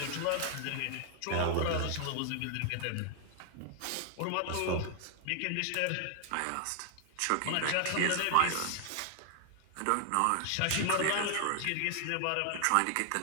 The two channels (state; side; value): different; both; correlation 0.00